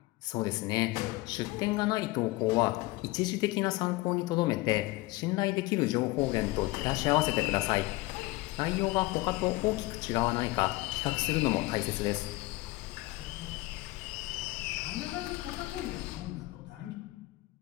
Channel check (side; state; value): right; quieter; 20.9 dB